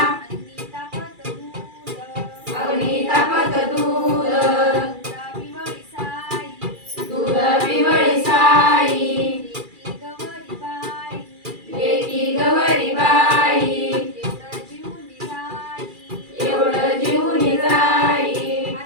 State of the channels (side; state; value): left; late; 2.4 ms